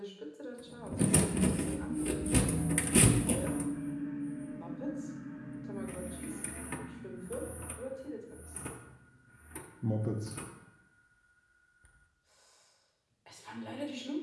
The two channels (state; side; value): identical; both; correlation 1.00